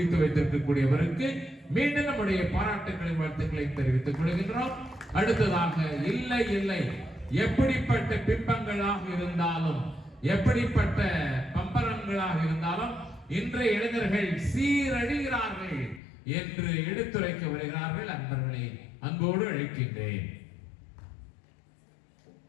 வைத்திருக்கக்கூடியவருக்கு மீண்டும் நம்முடைய பாராட்டுகளையும் வாழ்த்துக்களையும் தெரிவித்துக் கொள்கின்றோம். அடுத்ததாக இல்லை இல்லை, எப்படிப்பட்ட பிம்பங்களாக இருந்தாலும் எப்படிப்பட்ட பம்பரங்களாக இருந்தாலும் இன்றைய இளைஞர்கள் சீரழிகிறார்கள் என்று எடுத்துரைக்க வருகிறார்கள். அன்பர்களை அன்போடு அழைக்கின்றேன்.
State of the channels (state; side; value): drops out; right; at 16.0 s